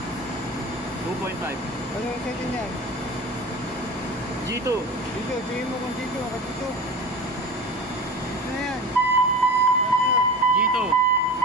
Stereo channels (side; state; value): both; normal; correlation 0.33